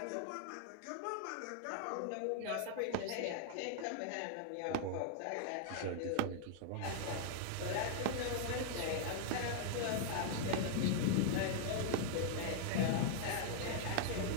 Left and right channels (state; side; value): different; both; correlation -0.01